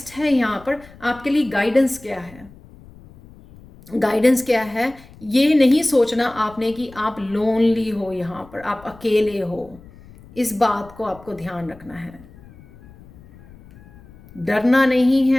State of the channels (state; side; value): noise; left; rumble, 22 dB below the sound